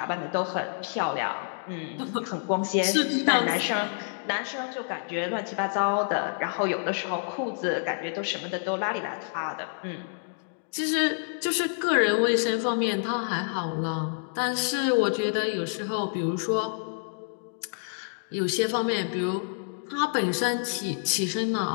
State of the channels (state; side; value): silent; right; digital silence